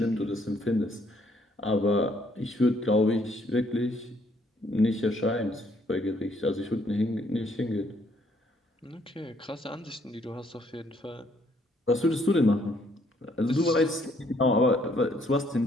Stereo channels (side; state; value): both; normal; correlation 0.67